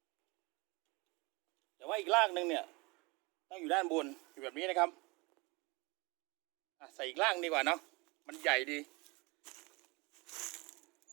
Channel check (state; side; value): quieter; left; 26.8 dB